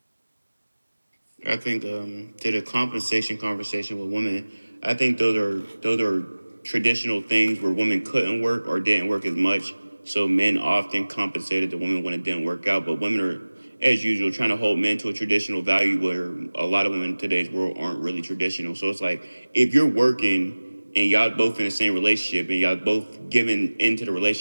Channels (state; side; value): inverted; both; correlation -1.00